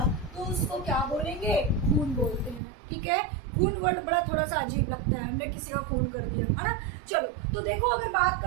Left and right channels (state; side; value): drops out; left; at 2.6 s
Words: तो उसको क्या बोलेंगे, खून बोलते हैं। ठीक है, खून वर्ड बड़ा थोड़ा सा अजीब लगता है, हमने किसी का खून कर दिया है ना। चलो तो देखो अगर बात